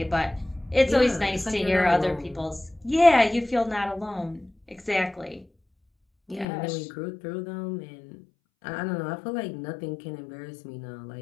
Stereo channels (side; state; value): right; drops out; at 6.5 s